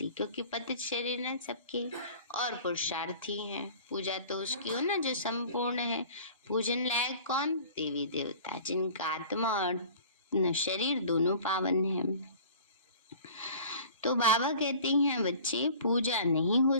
क्योंकि पतित शरीर है सबके और पुरुषार्थी हैं। पूजा तो उसकी हो ना जो संपूर्ण है। पूजन लायक कौन, देवी देवता, जिनका आत्मा और शरीर दोनों पावन हैं। तो बाबा कहते हैं बच्चे पूजा नहीं हो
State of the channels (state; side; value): inverted; both; correlation -0.45